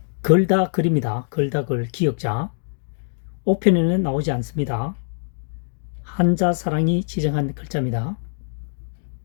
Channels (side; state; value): right; silent; digital silence